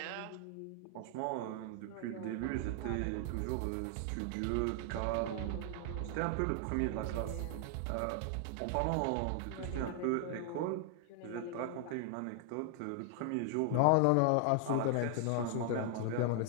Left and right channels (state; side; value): different; both; correlation 0.00